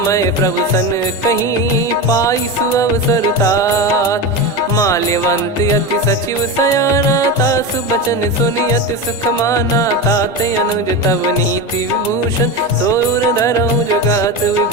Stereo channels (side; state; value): both; normal; correlation 0.20